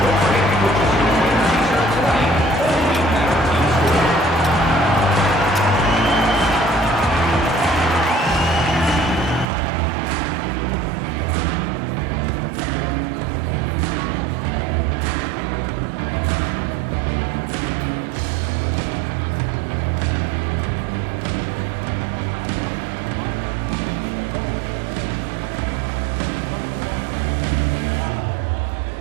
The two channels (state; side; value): drops out; left; at 9.5 s